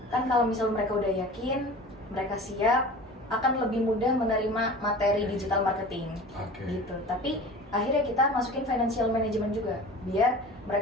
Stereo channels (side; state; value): both; normal; correlation 0.38